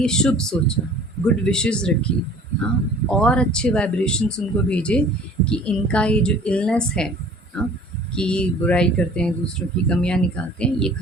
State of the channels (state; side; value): normal; both; correlation 0.49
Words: शुभ सोचा, गुड विशेज़ रखी, हाँ, और अच्छे वाइब्रेशंस उनको भेजे कि इनका ये जो इलनेस है, हाँ, कि बुराई करते हैं, दूसरों की कमियाँ निकालते हैं, ये